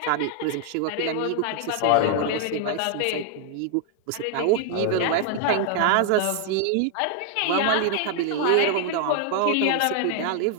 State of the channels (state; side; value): different; both; correlation 0.00